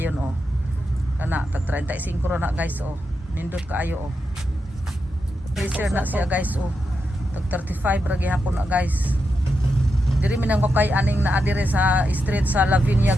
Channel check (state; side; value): normal; both; correlation 0.86